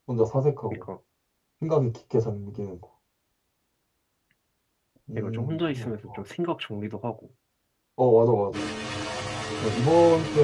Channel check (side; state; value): both; identical; correlation 1.00